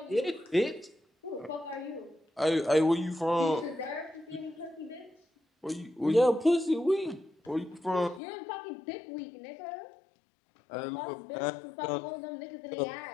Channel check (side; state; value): right; drops out; at 8.2 s